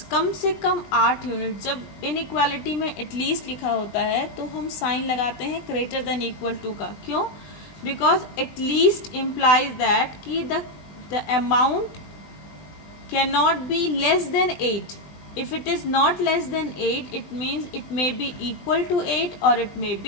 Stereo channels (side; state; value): right; late; 20 ms